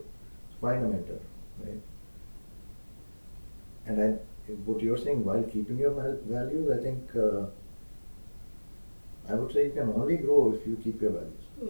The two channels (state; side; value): inverted; both; correlation -1.00